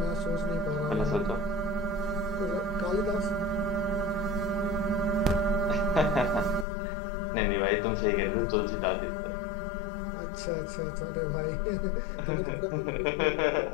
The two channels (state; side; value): drops out; right; at 6.7 s